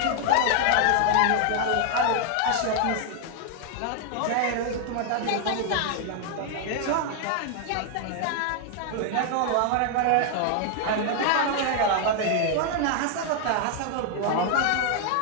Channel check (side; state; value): both; different; correlation 0.00